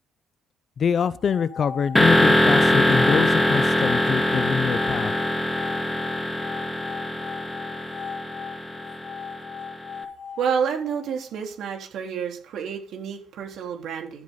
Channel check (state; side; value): normal; both; correlation 0.88